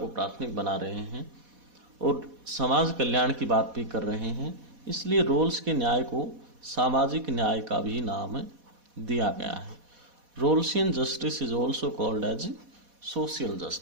प्राथमिक बना रहे हैं और समाज कल्याण की बात भी कर रहे हैं। इसलिए रोल्स के न्याय को सामाजिक न्याय का भी नाम दिया गया है। Rawlsian justice is also called as social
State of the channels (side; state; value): left; late; 4.1 ms